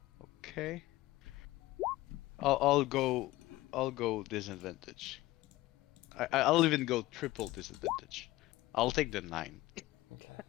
Okay. I'll go disadvantage. I'll even go triple disadvantage. I'll take the 9. Okay.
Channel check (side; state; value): right; quieter; 17.8 dB